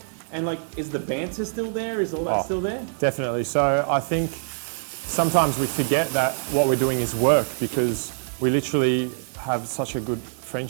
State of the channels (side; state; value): left; silent; digital silence